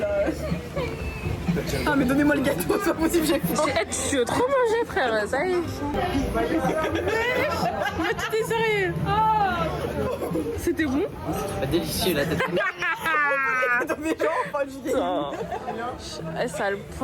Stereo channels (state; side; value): identical; both; correlation 1.00